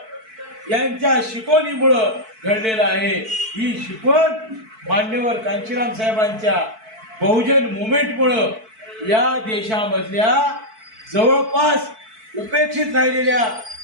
यांच्या शिकवणीमुळं घडलेला आहे. ही शिकवण मान्यवर कांशीराम साहेबांच्या बहुजन मुवमेंटमुळं या देशामधल्या जवळपास उपेक्षित राहिलेल्या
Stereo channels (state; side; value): late; left; 4.5 ms